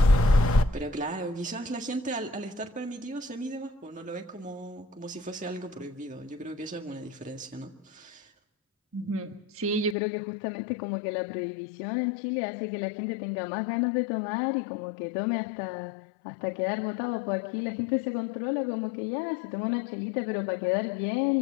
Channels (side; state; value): right; drops out; at 10.0 s